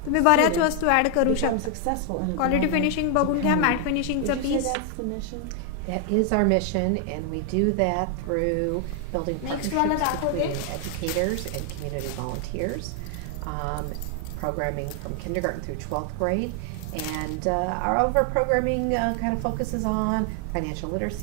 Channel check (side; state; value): both; different; correlation 0.00